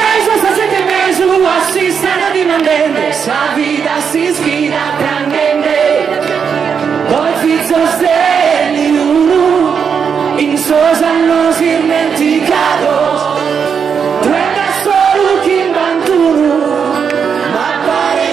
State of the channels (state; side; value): quieter; left; 6.7 dB